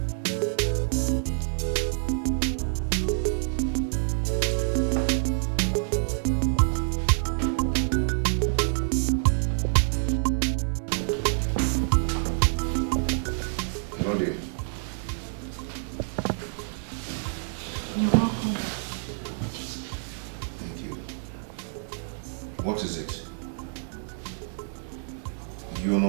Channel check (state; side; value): silent; left; digital silence